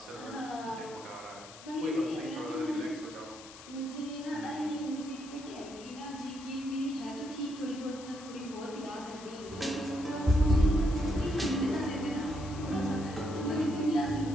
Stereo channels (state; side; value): noise; left; hiss, 17 dB below the sound